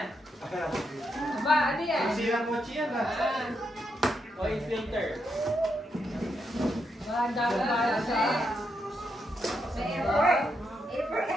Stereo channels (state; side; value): normal; both; correlation 0.81